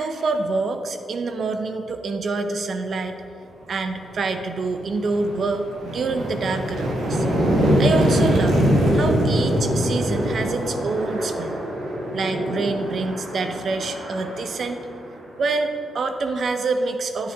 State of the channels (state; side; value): normal; both; correlation 0.80